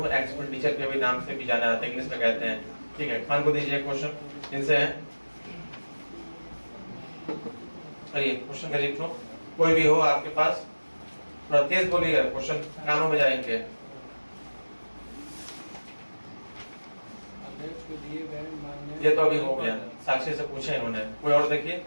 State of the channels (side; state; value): both; inverted; correlation -1.00